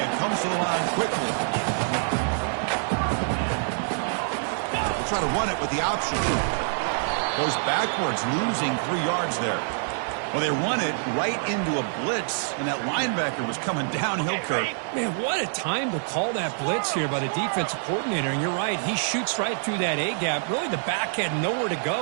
comes to the line quickly. They'll try to run it with the option. Goes backwards, losing 3 yards there. Well, they run it right into a blitz, and that linebacker was coming downhill, Kurt. Man, what a time to call that blitz here by the defensive coordinator. And you're right, he shoots right through that A-gap. Really, the back had nowhere to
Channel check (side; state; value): left; silent; digital silence